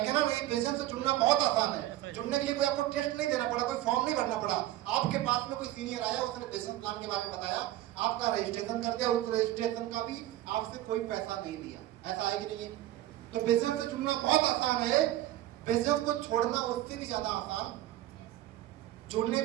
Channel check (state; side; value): quieter; left; 14.7 dB